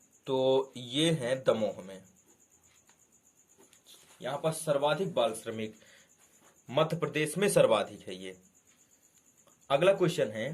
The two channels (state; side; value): identical; both; correlation 1.00